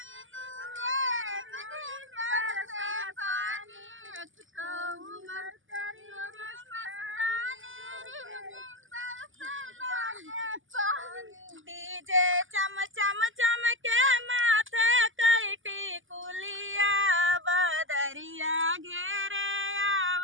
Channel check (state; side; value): late; left; 0.58 ms